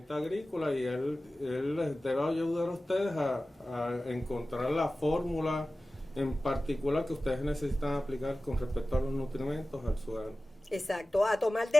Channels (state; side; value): normal; both; correlation 0.96